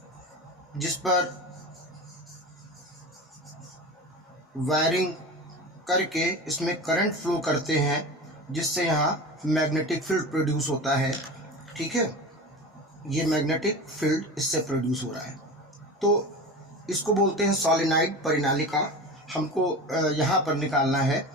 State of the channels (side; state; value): both; normal; correlation 0.30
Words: जिस पर वायरिंग करके इसमें करंट फ्लो करते हैं जिससे यहाँ मैग्नेटिक फील्ड प्रोड्यूस होता है। ठीक है, ये मैग्नेटिक फील्ड इससे प्रोड्यूस हो रहा है, तो इसको बोलते हैं सॉलिनाइड परिनालिका। हमको यहाँ पर निकालना है